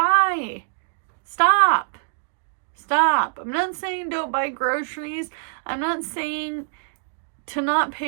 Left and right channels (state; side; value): silent; left; digital silence